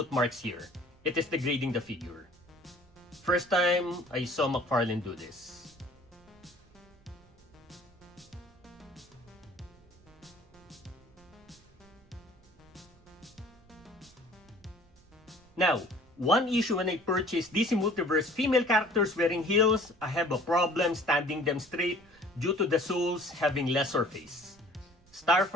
marks here. It is degrading the figure. First time I saw McFarlane do this. Now, one issue when I purchased DC Multiverse female characters wearing heels, I have a problem standing them straight due to the soles having less surface.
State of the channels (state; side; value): noise; right; rumble, 28 dB below the sound